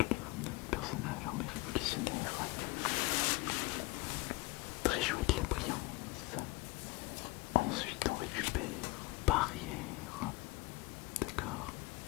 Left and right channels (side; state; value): right; quieter; 22.5 dB